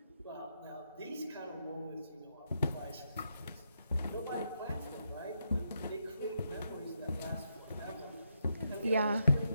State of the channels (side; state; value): both; inverted; correlation -0.81